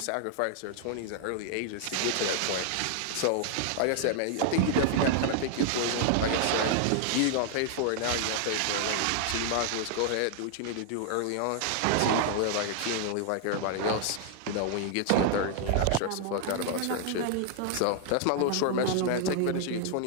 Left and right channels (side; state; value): both; different; correlation 0.00